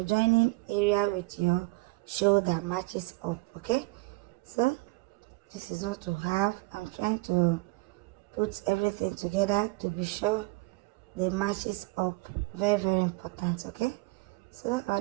joining area with your shoulder matches up, okay. So this is what to have. I'm trying to put everything together to be sure the matches up. Very, very important, okay. So our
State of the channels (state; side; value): quieter; left; 24.0 dB